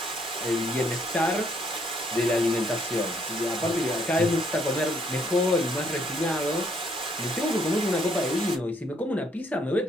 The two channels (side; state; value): both; normal; correlation 0.69